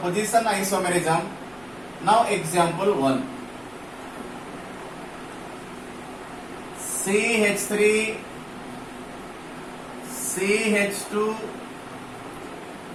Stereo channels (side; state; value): right; noise; rumble, 26 dB below the sound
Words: isomerism. Now example 1. CH3, CH2,